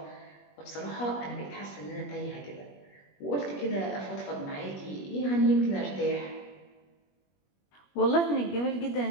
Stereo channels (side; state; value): right; late; 21 ms